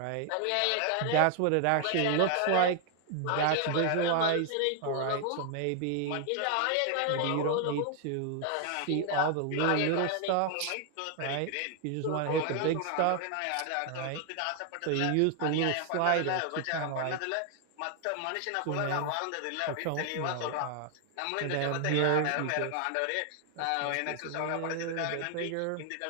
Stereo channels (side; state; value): both; different; correlation 0.00